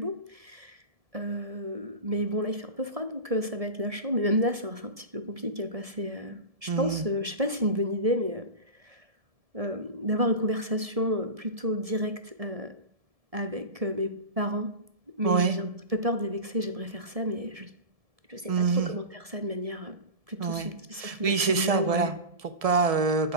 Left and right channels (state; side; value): late; left; 1.7 ms